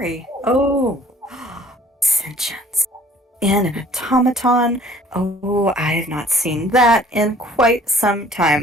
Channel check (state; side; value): normal; both; correlation 0.54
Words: Oh, sentience. In an automaton. Oh, I have not seen that in quite some